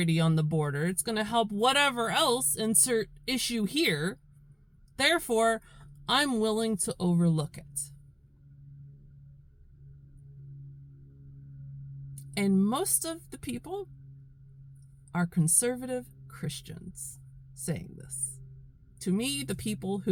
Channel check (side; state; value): both; identical; correlation 1.00